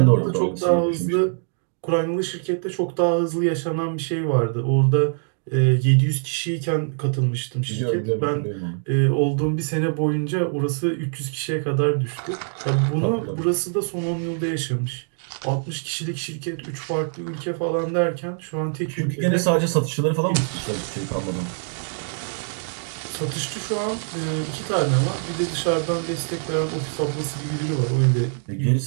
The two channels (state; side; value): silent; left; 63 dB below the other